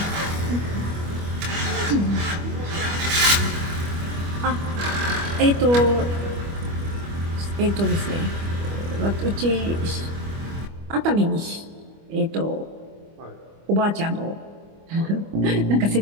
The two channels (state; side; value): late; left; 25 ms